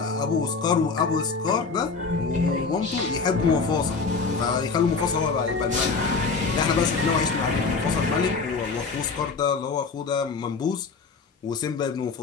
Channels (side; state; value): right; quieter; 4.7 dB